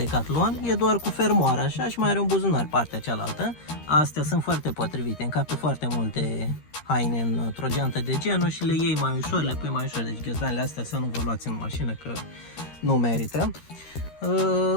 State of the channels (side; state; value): right; late; 13 ms